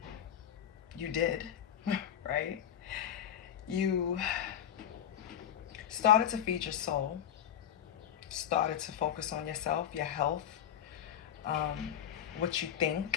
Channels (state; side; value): quieter; right; 9.8 dB